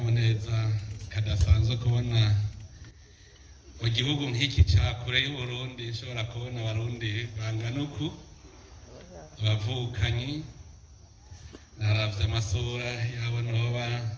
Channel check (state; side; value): identical; both; correlation 1.00